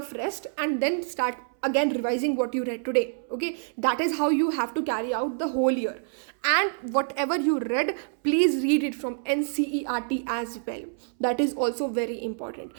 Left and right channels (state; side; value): silent; left; 60 dB below the other